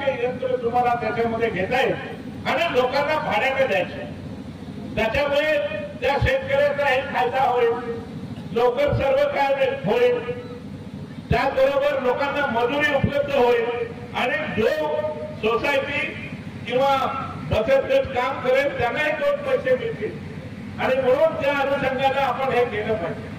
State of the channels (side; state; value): both; identical; correlation 1.00